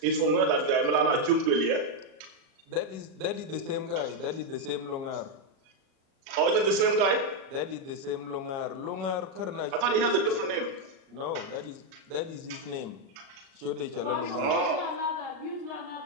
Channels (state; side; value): late; left; 37 ms